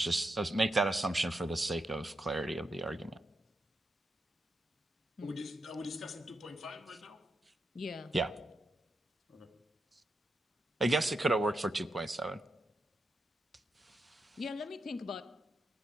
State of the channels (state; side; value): normal; both; correlation 0.85